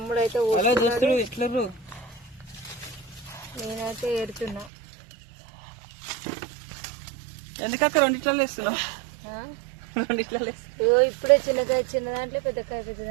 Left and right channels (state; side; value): drops out; left; at 4.7 s